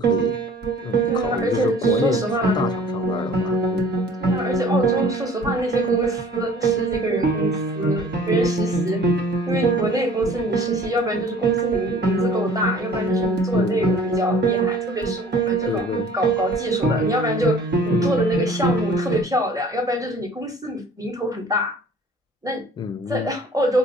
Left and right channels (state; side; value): normal; both; correlation 0.50